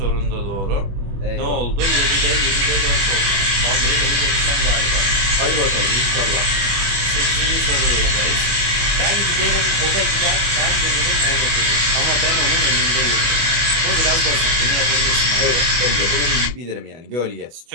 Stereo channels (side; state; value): left; late; 24 ms